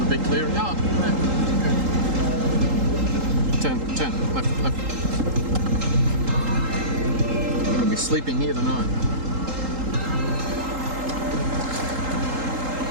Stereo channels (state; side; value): late; left; 3.8 ms